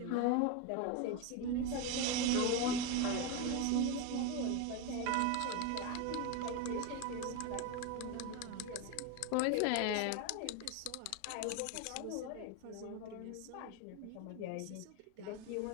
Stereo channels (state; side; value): different; both; correlation 0.02